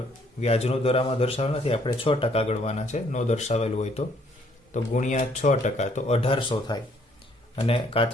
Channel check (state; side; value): normal; both; correlation 0.64